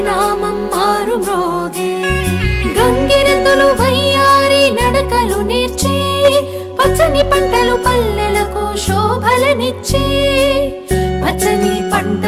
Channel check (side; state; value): both; identical; correlation 1.00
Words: మారు మ్రోగే. గంగిరెద్దులు వయ్యారి నడకలు నేర్చి పచ్చని పంటలు పల్లెలకు శోభలనిచ్చి పచ్చని